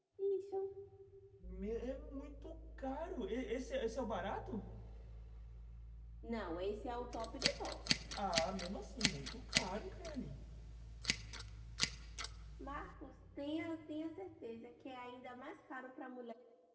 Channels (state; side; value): identical; both; correlation 1.00